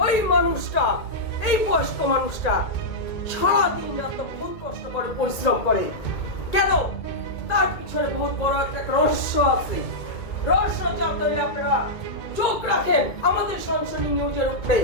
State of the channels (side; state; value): right; late; 2.2 ms